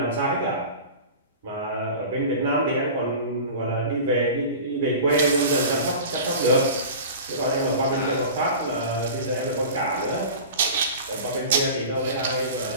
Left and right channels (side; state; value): both; inverted; correlation -0.36